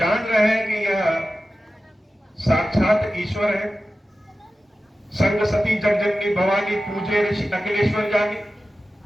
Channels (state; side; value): normal; both; correlation 0.94